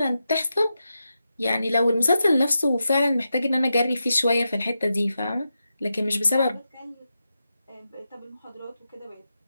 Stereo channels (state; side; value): inverted; both; correlation -0.89